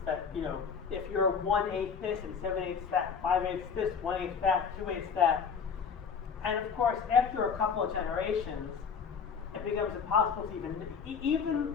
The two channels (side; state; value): right; quieter; 6.3 dB